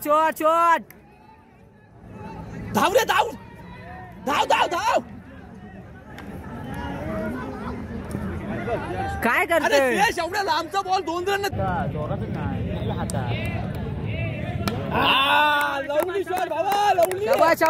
शॉट धाव रे धाव काय करते एवढ्या लांबचा बॉल 2 रन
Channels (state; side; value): identical; both; correlation 1.00